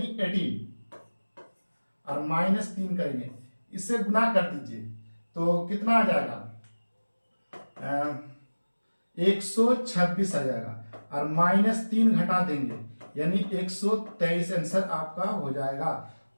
18, और -3 करेंगे, इससे गुना कर दीजिए तो कितना आ जाएगा, 126 आ जाएगा, और -3 घटा देंगे यानी 123 आंसर आपका हो जाएगा।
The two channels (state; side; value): inverted; both; correlation -1.00